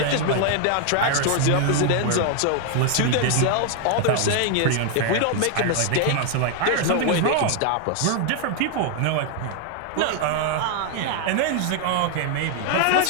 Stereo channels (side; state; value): both; different; correlation 0.00